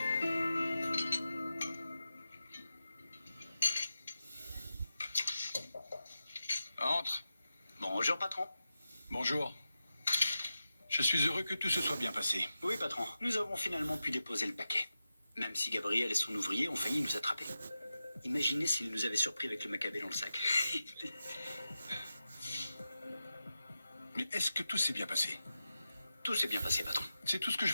Entre. Bonjour, patron. Bonjour. Je suis heureux que tout se soit bien passé. Oui, patron. Nous avons finalement pu déposer le paquet. Même si Gabriel et son ouvrier ont failli nous attraper. Imaginez s'ils nous avaient surpris avec le macabé dans le sac. Mais est-ce que tout s'est bien passé? Tout s'est bien passé, patron. C'est tout ce que je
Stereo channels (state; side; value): inverted; both; correlation -0.91